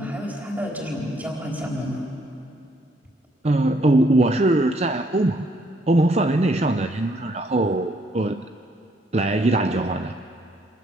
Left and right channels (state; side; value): normal; both; correlation 0.69